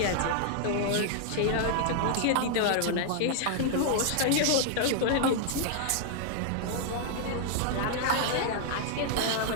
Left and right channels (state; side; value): different; both; correlation 0.00